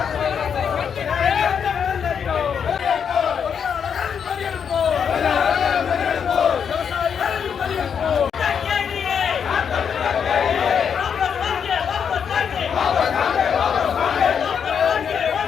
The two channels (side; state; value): right; quieter; 7.3 dB